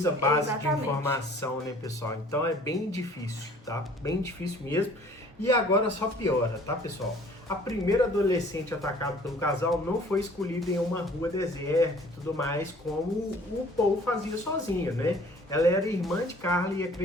base Exatamente. de informação, né, pessoal? Então é bem difícil, tá? Bem difícil mesmo. E agora só piora, tá, pessoal? A primeira adolescente atacada pelo casal não foi escolhida em uma rua deserta e tudo mais, como o Paul fazia sozinho, né? Ela era irmã de Carla e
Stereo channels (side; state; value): both; normal; correlation 0.53